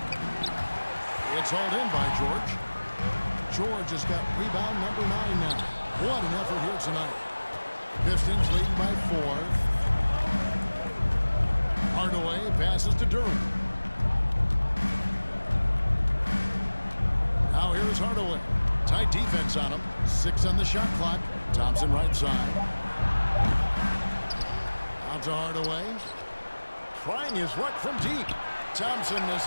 It's hauled in by George. George has got rebound number 9 now. What an effort here tonight. Pistons leading by 4. Hardaway passes to Durham. Now here is Hardaway. Tight defense on him. 6 on the shot clock. Thompson right side. Out to Hardaway. Trying his luck from deep. Thompson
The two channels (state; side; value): inverted; both; correlation -1.00